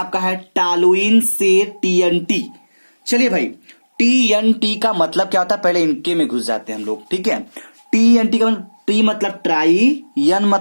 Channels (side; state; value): both; inverted; correlation -1.00